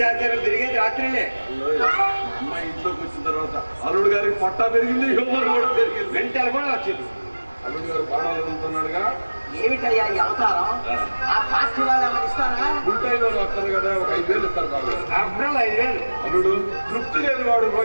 తిరిగేది రాత్రిలే. అమ్మాయి ఇంట్లోకి వచ్చిన తర్వాత అల్లుడు గారికి పొట్ట పెరిగింది, హ్యూమర్ కూడా పెరిగింది. వెంటనే కూడా వచ్చింది. అల్లుడు గారు బాణాలు ఎదుగుతున్నాడుగా. ఏమిటయ్యా ఈ అవతారం? ఆ పార్టీ వాళ్ళు ఏమైనా ఇస్తారా? ఉంటాయి వాళ్ళు వస్తారు కదా, ఒక 5,000 ఇస్తారు బాబు. అబ్బాయి 5,000. అల్లుడు తృప్తి లేని వాడు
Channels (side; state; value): both; inverted; correlation -1.00